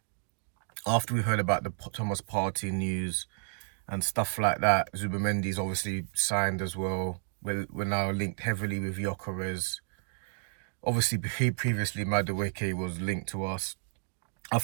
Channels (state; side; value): silent; left; digital silence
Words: after we heard about the Thomas Partey news and stuff like that, Zubimendi's obviously signed as well. We're now linked heavily with Gyökeres. Obviously, previously Madueke was linked to us. I